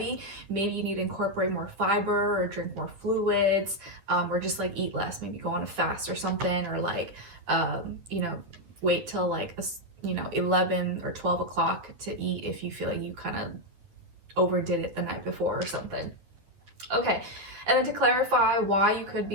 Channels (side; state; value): left; late; 10 ms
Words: maybe you need to incorporate more fiber or drink more fluids, or just like eat less, maybe go on a fast or something, or like, you know, wait till like, 11 or 12 o'clock to eat if you feel like you kind of overdid it the night before or something. Okay, and then to clarify why you could